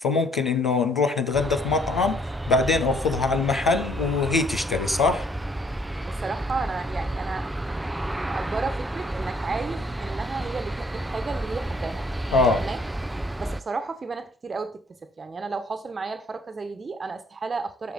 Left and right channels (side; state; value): both; normal; correlation 0.63